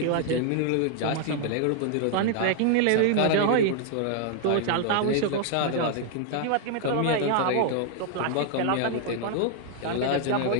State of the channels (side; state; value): both; different; correlation 0.00